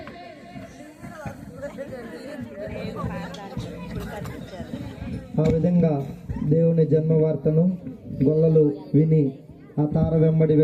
ఆ విధంగా దేవుని జన్మ వార్తను గొల్లలు విని ఆ తార వెంబడి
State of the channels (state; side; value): identical; both; correlation 1.00